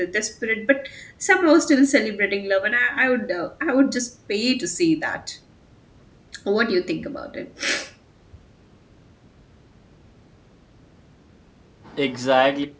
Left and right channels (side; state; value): both; identical; correlation 1.00